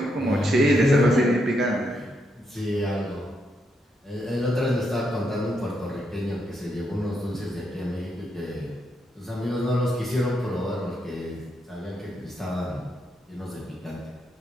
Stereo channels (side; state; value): both; normal; correlation 0.80